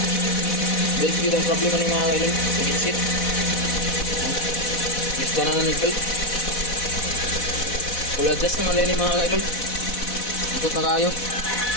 Belt gitu ang problema ni mga kaidol. Sit. Gusto na ng belt. Full adjust naman din mga kaidol. Ikot na kayo.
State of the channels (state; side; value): late; right; 4.1 ms